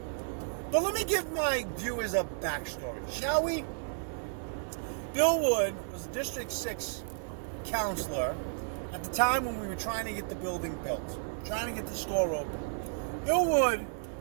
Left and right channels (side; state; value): left; silent; 56 dB below the other